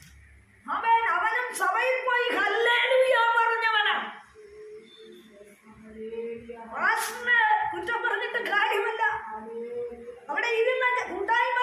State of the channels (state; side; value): identical; both; correlation 1.00